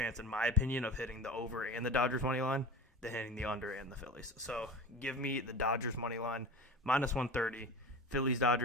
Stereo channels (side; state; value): both; normal; correlation 0.33